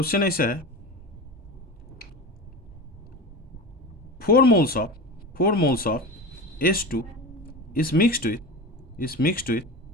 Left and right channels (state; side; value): normal; both; correlation 0.27